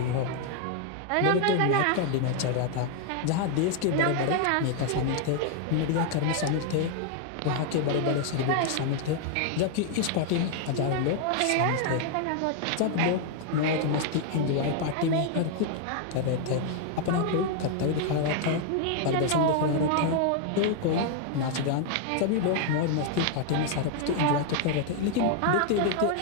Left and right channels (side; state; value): both; different; correlation 0.00